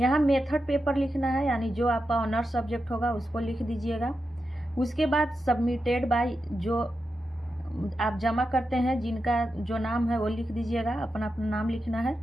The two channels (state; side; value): normal; both; correlation 0.89